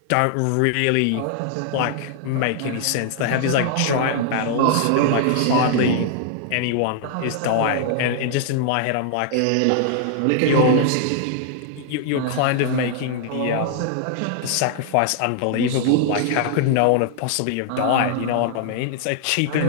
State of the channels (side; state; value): both; different; correlation 0.00